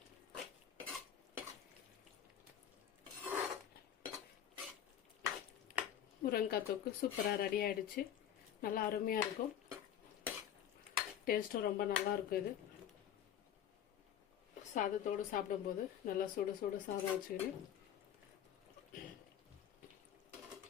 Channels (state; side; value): quieter; right; 9.8 dB